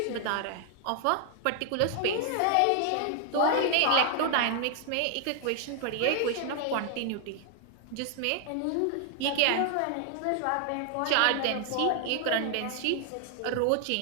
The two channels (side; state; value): both; different; correlation 0.00